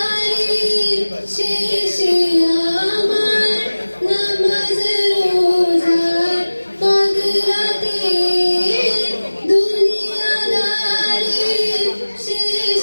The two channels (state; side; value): inverted; both; correlation -1.00